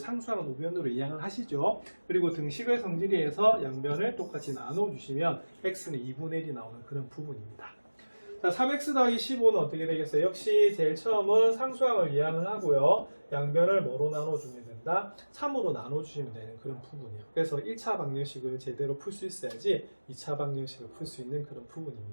우변으로 이항을 하시죠. 그리고 등식의 성질에서 양변을 똑같이 나눠주시면 x는 2분의 1이 나오는 그런 부분입니다. 자, 3x 더하기 15는 어떻게 되겠어요? 역시 제일 처음은 상수항을 이항을 하고요. 양변을 뭐로 나눠주면 된다? 3으로 나눠주시면 되는 그런 부분이에요. 그래서 1차 방정식을 제대로 풀 수 있어야지 2차 방정식을 풀 수 있는 그런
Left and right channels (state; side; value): inverted; both; correlation -1.00